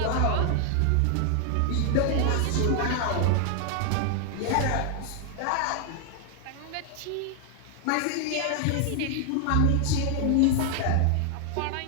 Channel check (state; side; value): different; both; correlation 0.00